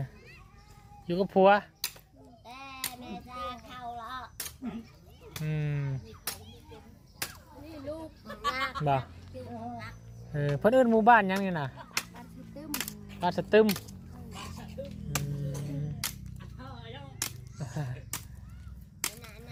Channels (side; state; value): both; identical; correlation 1.00